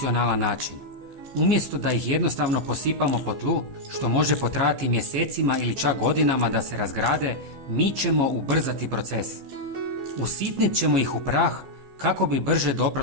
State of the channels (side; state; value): left; late; 14 ms